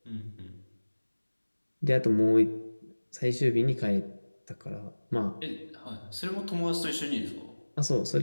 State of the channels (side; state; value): both; inverted; correlation -1.00